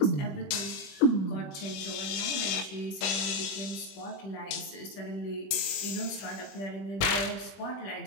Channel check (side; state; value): right; late; 21 ms